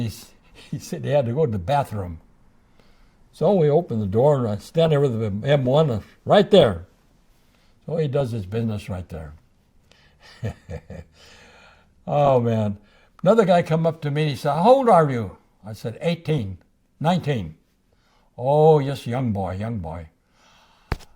he said he had to go to the bathroom. So we opened the door, and I stand there with the M1 right there. So he does his business right there. Oh, man. Another guy come up to me, and he said, how old are you? I said, 18, 19. Oh, yes, young boy.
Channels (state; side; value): identical; both; correlation 1.00